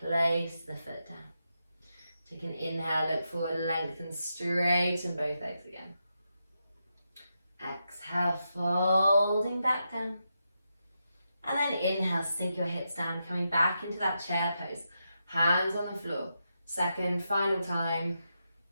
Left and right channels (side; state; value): both; inverted; correlation -0.86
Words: place the foot down. Take an inhale, look forward, lengthen, straighten both legs again. Exhale, folding back down. And then inhale, sink your hips down, coming back into that chair pose. Hands on the floor. Second, final time.